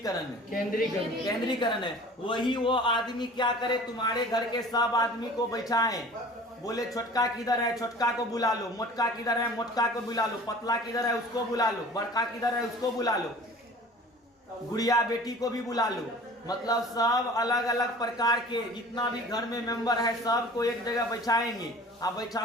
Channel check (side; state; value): both; normal; correlation 0.44